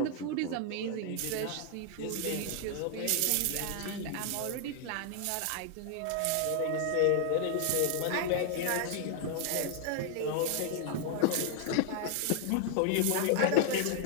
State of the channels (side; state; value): both; different; correlation 0.00